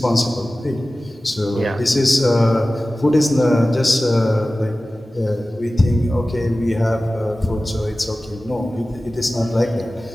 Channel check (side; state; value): both; normal; correlation 0.96